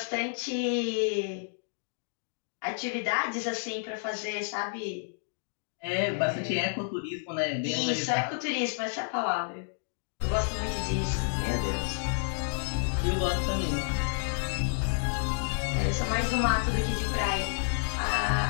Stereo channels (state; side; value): silent; right; digital silence